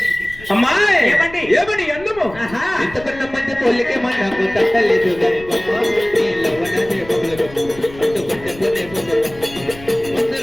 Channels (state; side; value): noise; left; rumble, 18 dB below the sound